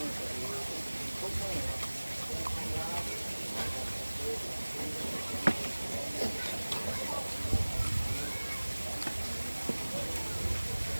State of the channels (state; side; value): inverted; both; correlation -1.00